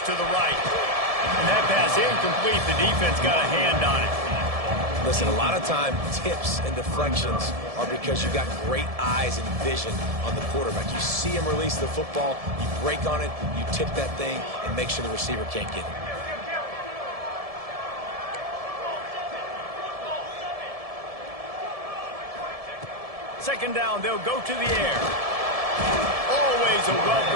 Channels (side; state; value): left; late; 1.7 ms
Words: the right. And that pass incomplete. The defense got a hand on it. Listen, a lot of time, tips and deflections are because you got great eyes and vision on the quarterback. You see him release the football, you break on it, you tip that thing, and make sure the receiver can't get it. Second down, they'll go to the air. Always a